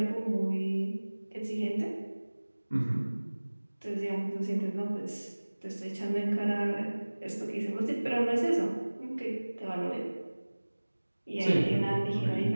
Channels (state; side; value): inverted; both; correlation -1.00